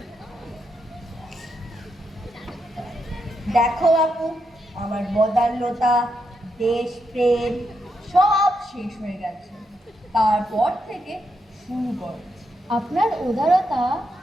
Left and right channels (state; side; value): normal; both; correlation 0.82